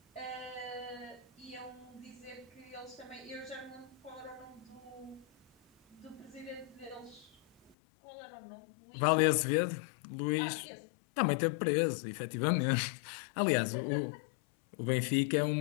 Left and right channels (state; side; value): drops out; right; at 7.8 s